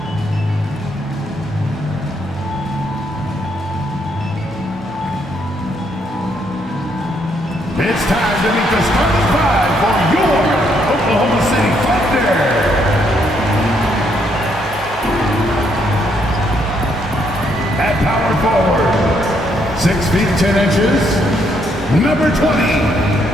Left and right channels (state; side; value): normal; both; correlation 0.73